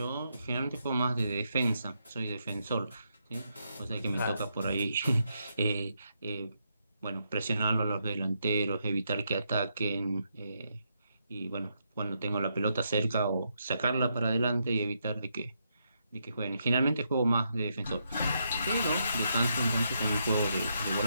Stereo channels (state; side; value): inverted; both; correlation -0.80